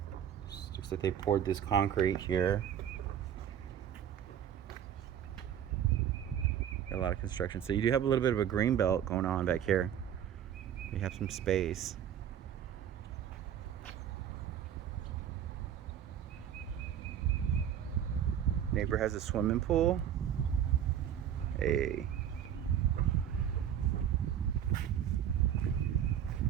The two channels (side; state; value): left; quieter; 9.7 dB